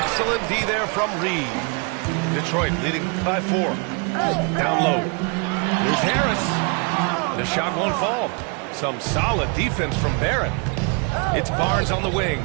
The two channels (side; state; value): left; quieter; 34.6 dB